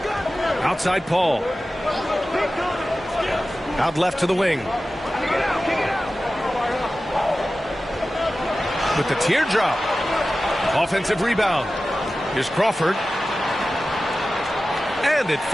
Outside Paul. Out left to the wing. With the teardrop. Offensive rebound. Here's Crawford. And it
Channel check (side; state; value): both; normal; correlation 0.95